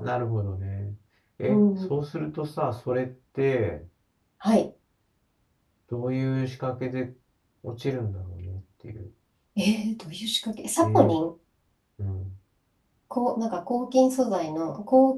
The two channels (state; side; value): identical; both; correlation 1.00